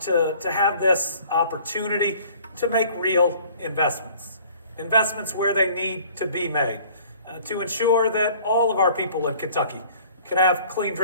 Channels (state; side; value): inverted; both; correlation -0.52